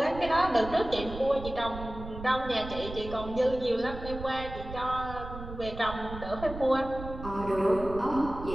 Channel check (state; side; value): noise; right; rumble, 11 dB below the sound